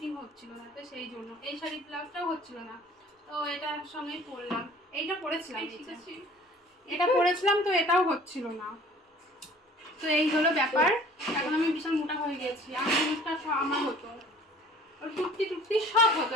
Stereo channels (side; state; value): both; normal; correlation 0.51